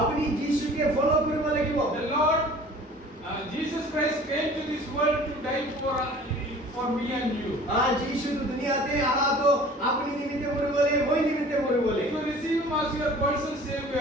আপনি যিশুকে ফলো কৰিব লাগিব The Lord, Jesus Christ came to this world to die for me and you. যিশু তো দুনিয়াতে আহা তো আপনি নিমিত্তে মরে বলে মই নিমিত্তে মরে বলে If you receive Him as your personal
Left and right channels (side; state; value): both; normal; correlation 0.46